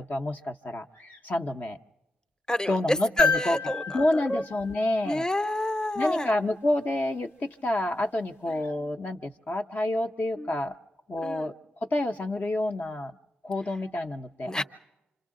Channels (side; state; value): both; normal; correlation 0.87